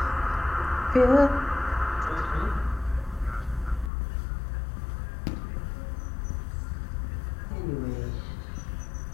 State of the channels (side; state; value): right; drops out; at 3.9 s